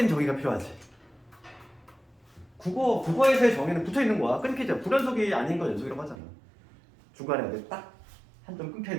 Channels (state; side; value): drops out; left; at 6.2 s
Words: 정의가 필요하지. 국어에서의 정의는 붙어 있는 거야. 끊기죠. 불연속이 아닌 건 연속이라고 하잖아. 중간에 딱 한 점 끊겨